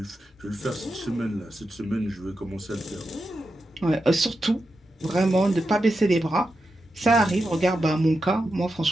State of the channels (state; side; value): normal; both; correlation 0.88